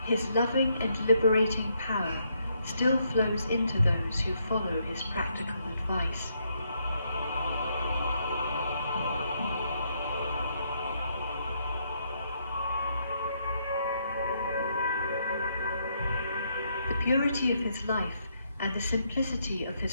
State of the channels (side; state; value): both; inverted; correlation -0.75